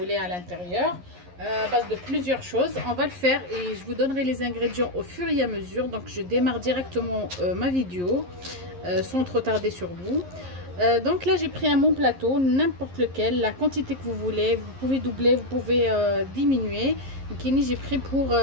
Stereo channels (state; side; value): late; left; 11 ms